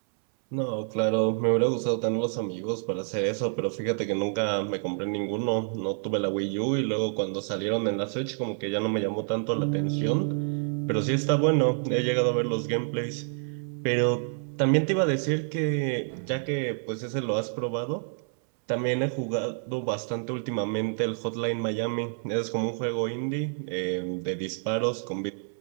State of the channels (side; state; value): left; silent; 59 dB below the other